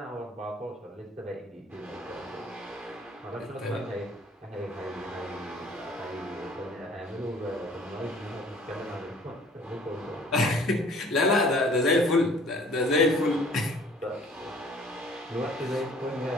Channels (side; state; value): both; normal; correlation 0.53